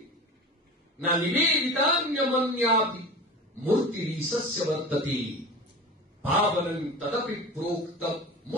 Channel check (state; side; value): normal; both; correlation 0.33